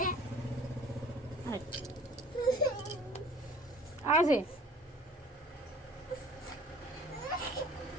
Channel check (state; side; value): normal; both; correlation 0.50